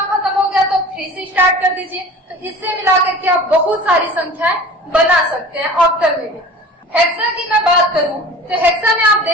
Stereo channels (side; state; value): both; normal; correlation 0.40